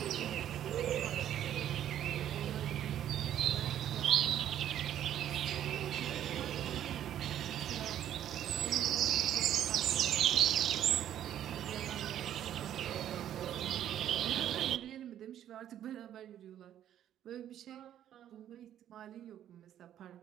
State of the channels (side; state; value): left; quieter; 11.0 dB